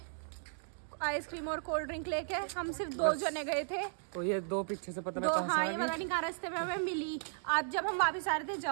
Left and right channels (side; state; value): left; silent; digital silence